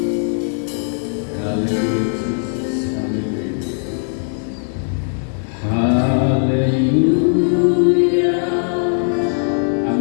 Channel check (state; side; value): silent; right; digital silence